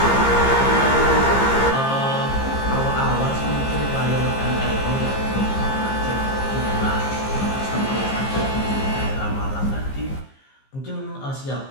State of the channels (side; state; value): right; late; 15 ms